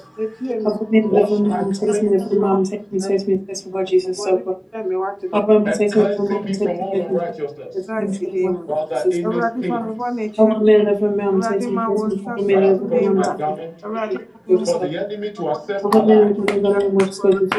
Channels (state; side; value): identical; both; correlation 1.00